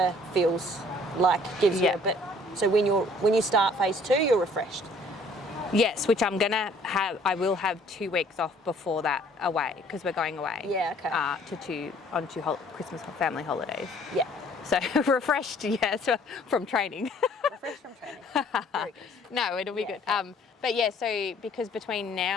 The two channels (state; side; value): normal; both; correlation 0.57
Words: feels like gives you a bit. So when you start phase 2, you're refreshed. Yes, which I'm gonna have. I will have 2 weeks off before that away because we're going away. Yeah. Okay. On 2 Christmas family holidays. Yeah. So refreshed, so from training. Refreshed from training. Very good. No, it'll be good. Okay. But yeah, so because between